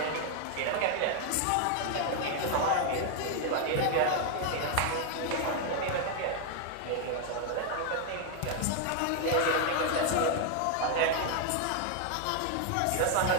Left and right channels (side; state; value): both; different; correlation 0.00